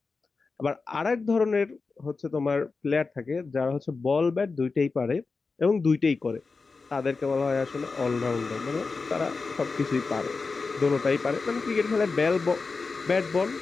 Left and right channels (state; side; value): quieter; right; 4.3 dB